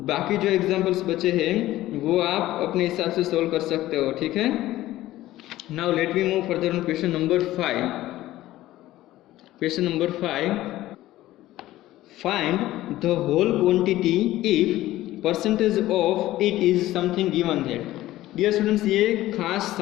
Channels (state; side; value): quieter; right; 15.6 dB